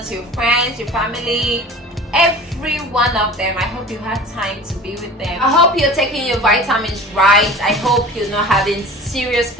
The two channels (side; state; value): both; normal; correlation 0.39